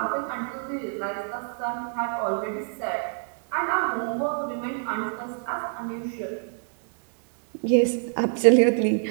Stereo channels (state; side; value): silent; left; 59 dB below the other